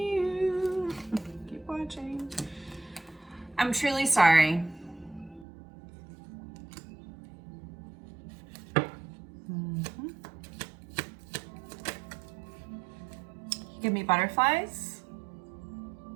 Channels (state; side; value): drops out; left; at 5.5 s